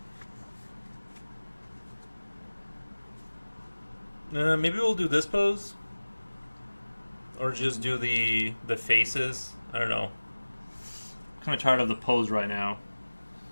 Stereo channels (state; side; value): inverted; both; correlation -1.00